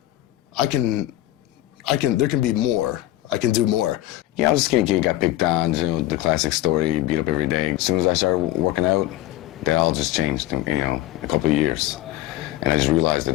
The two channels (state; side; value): quieter; right; 15.2 dB